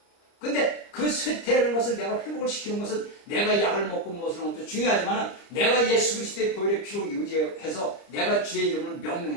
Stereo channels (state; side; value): late; right; 30 ms